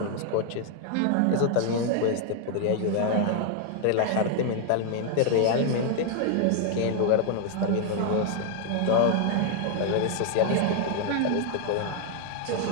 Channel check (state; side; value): different; both; correlation 0.00